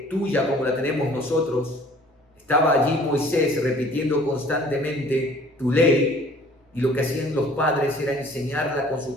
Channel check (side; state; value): both; normal; correlation 0.53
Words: tuya como la tenemos nosotros, estaba allí Moisés repitiendo constantemente tu ley, y lo que hacían los padres era enseñarla con sus